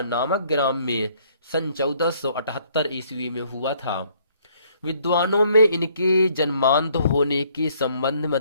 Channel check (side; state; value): both; inverted; correlation -0.64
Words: नामक ग्राम में सन 1478 ईस्वी में हुआ था। विद्वानों में इनके जन्मांध होने के संबंध